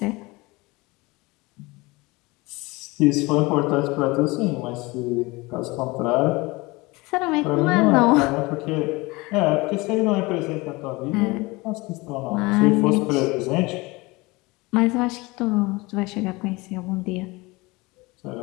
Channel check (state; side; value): quieter; right; 23.4 dB